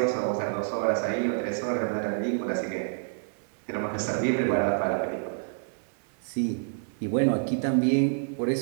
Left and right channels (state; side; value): silent; left; digital silence